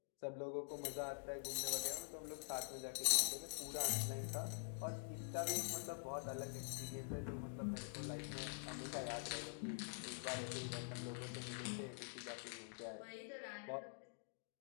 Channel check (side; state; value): right; silent; digital silence